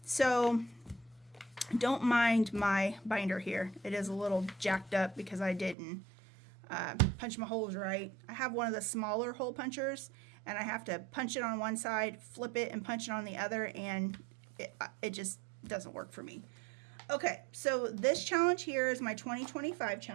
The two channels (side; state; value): left; drops out; at 5.8 s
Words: so don't mind my binder here. It is a little jacked up because I didn't punch my holes right. I have one of the smaller hole punchers, and I have to punch it on one side, flip it, and punch it on the other, and it just doesn't work for me. Okay, so this challenge here is my 2025